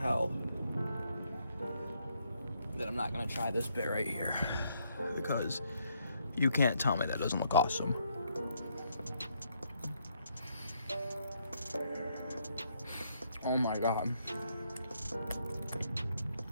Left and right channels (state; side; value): inverted; both; correlation -0.73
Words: that I'm not gonna try this bit right here, because you can't tell me that doesn't look awesome. Oh my god.